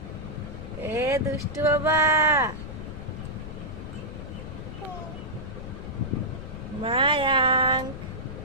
এ দুষ্টু বাবা, মায়াঙ্ক,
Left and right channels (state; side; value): noise; left; rumble, 9 dB below the sound